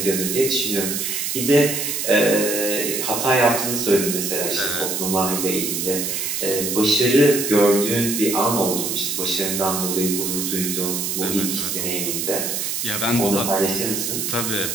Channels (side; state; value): right; noise; hiss, 2 dB below the sound